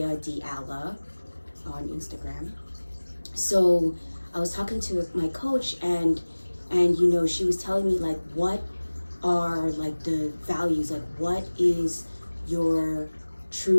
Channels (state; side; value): inverted; both; correlation -1.00